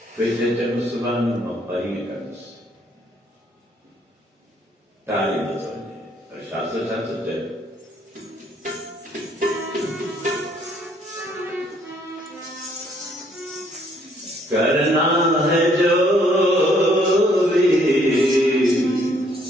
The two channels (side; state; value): both; normal; correlation 0.65